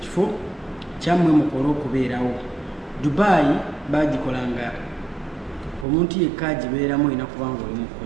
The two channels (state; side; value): drops out; left; at 5.9 s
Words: kyammwe mukole okubeerawo. Dubai bagikolanga omuntu yekka agibeeramu olina kubanga oli